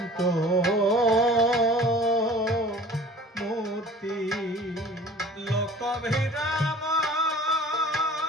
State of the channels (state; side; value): normal; both; correlation 0.46